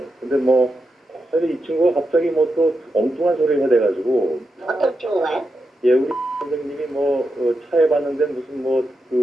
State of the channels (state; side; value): normal; both; correlation 0.87